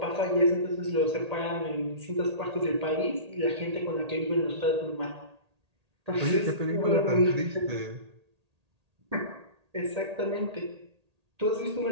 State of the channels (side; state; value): left; late; 1.8 ms